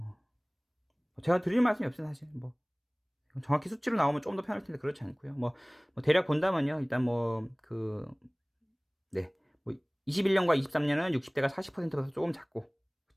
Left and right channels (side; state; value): both; identical; correlation 1.00